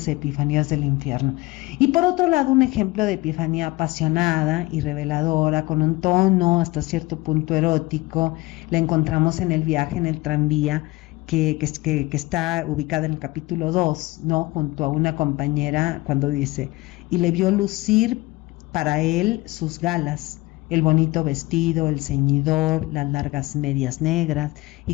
epifanías del infierno. Y por otro lado, un ejemplo de epifanía apasionada y reveladora, con un tono hasta cierto punto erótico, la encontramos en el viaje en el tranvía, que está ubicada en el capítulo 2, ¿no?, junto a una compañera, cuando dice, y le vio lucir para él sus galas, el bonito vestido, el ceñidor, las largas medias negras,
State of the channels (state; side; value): quieter; right; 21.1 dB